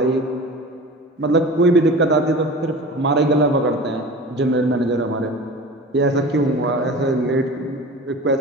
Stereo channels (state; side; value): normal; both; correlation 0.36